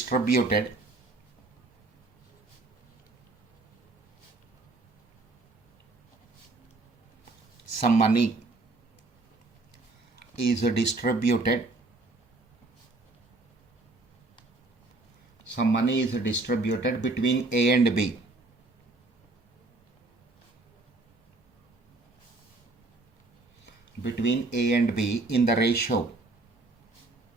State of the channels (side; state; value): left; quieter; 3.2 dB